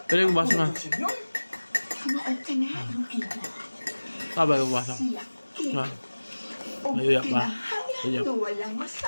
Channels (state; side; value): inverted; both; correlation -1.00